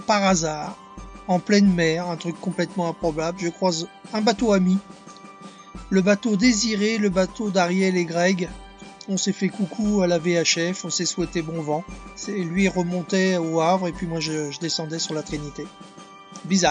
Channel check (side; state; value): both; identical; correlation 1.00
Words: hasard, en pleine mer, un truc complètement improbable. Je croise un bateau ami, le bateau Désiré, le bateau d'Ariel et Greg. On s'est fait coucou à la VHF, on s'est souhaité bon vent. Lui remontait au Havre et puis moi je descendais sur la Trinité.